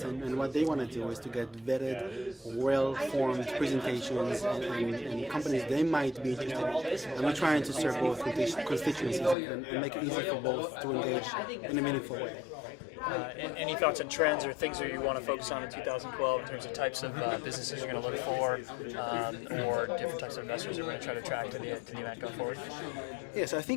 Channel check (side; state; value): right; drops out; at 9.3 s